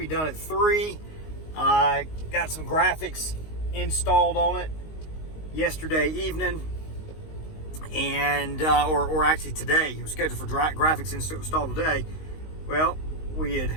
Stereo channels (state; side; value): late; right; 19 ms